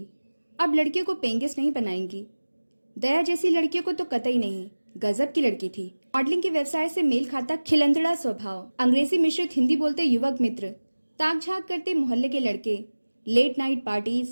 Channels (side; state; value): both; inverted; correlation -1.00